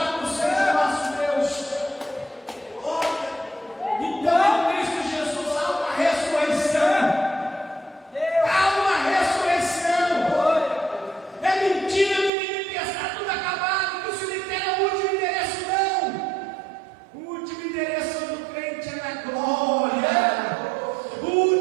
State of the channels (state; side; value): drops out; left; at 12.3 s